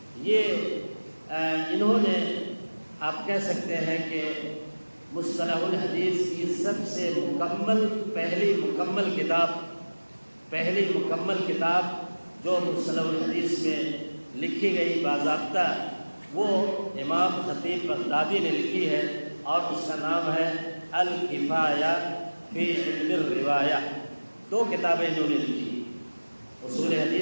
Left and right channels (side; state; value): both; inverted; correlation -1.00